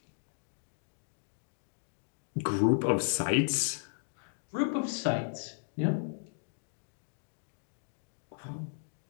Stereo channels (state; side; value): silent; right; digital silence